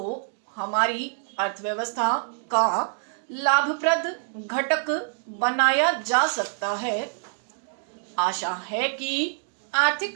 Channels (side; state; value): left; silent; digital silence